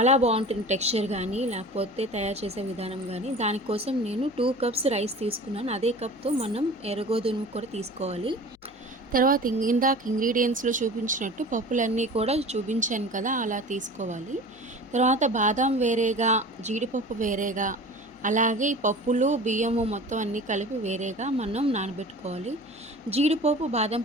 బాగుంటుంది టెక్స్చర్ కానీ, లేకపోతే తయారు చేసే విధానం కానీ. దానికోసం నేను 2 కప్స్ రైస్ తీసుకున్నాను. అదే కప్తో మనం ఎర్రగోధుమ కూడా తీసుకోవాలి. తర్వాత ఇందాక ఇంగ్రీడియంట్స్లో చూపించినట్టు పప్పులన్నీ కూడా చూపించాను కదా, అలా తీసుకోవాలి. తర్వాత బాదం వేరేగా, జీడిపప్పు వేరేగా, అలాగే ఈ పప్పులు బియ్యము మొత్తం అన్నీ కలిపి వేరేగా మనం నానబెట్టుకోవాలి. జీడిపప్పు బాదం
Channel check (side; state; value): left; noise; hum, 30 dB below the sound